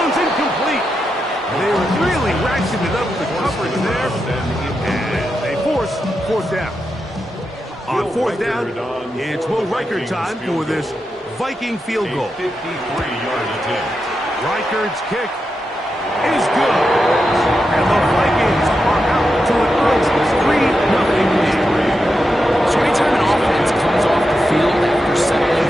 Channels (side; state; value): both; normal; correlation 0.87